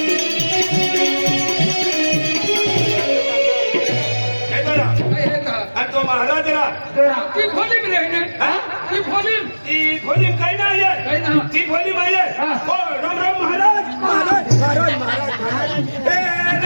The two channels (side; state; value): both; inverted; correlation -1.00